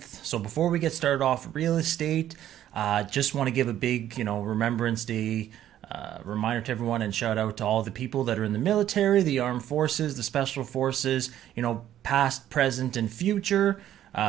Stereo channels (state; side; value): quieter; left; 11.8 dB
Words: So before we get started off real estate, just want to give a big, Remembrance Day reminder to everyone and shout out to all the people that are in the military, the armed forces, the special forces, past, present, and future.